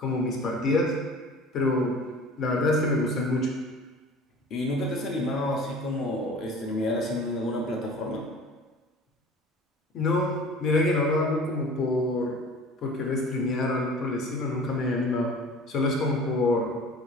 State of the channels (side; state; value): both; normal; correlation 0.43